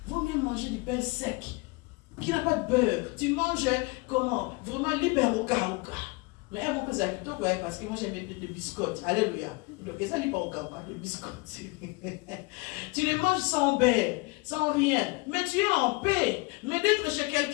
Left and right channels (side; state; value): right; quieter; 26.7 dB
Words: Vaut mieux manger du pain sec qui n'a pas de beurre. Tu manges comment? Vraiment libre au cas. Mais on peut s'habituer parce que moi j'aime des biscottes. Alléluia. Donc ça n'est pas au cas, les biscottes. Tu les manges sans beurre, sans rien. Mais tu es en paix. Mais d'être chez